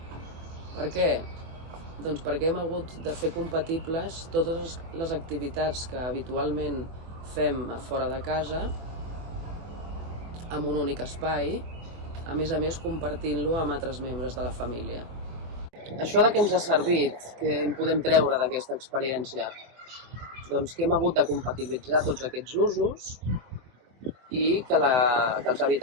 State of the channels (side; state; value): left; late; 24 ms